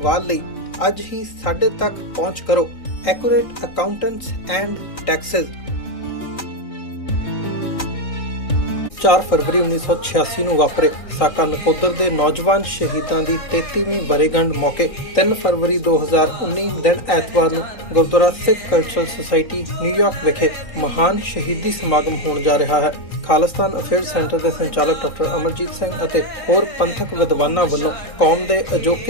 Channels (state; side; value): late; right; 1.6 ms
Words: ਲਈ ਅੱਜ ਹੀ ਸਾਡੇ ਤੱਕ ਪਹੁੰਚ ਕਰੋ। Accurate accountants and Texas. 4 ਫਰਵਰੀ 1986 ਨੂੰ ਵਾਪਰੇ ਸਾਕਾ ਨਕੋਦਰ ਦੇ ਨੌਜਵਾਨ ਸ਼ਹੀਦਾਂ ਦੀ 33ਵੀਂ ਵਰ੍ਹੇਗੰਢ ਮੌਕੇ 3 ਫਰਵਰੀ 2019 ਦਿਨ ਐਤਵਾਰ ਨੂੰ Gurdwara Sikh cultural society New York ਵਿਖੇ ਮਹਾਨ ਸ਼ਹੀਦੀ ਸਮਾਗਮ ਹੋਣ ਜਾ ਰਿਹਾ ਹੈ। ਖਾਲਿਸਤਾਨ ਅਫੇਅਰਸ ਸੈਂਟਰ ਦੇ ਸੰਚਾਲਕ ਡਾਕਟਰ ਅਮਰਜੀਤ ਸਿੰਘ ਅਤੇ ਹੋਰ ਪੰਥਕ ਵਿਦਵਾਨਾਂ ਵੱਲੋਂ ਕੌਮ ਦੇ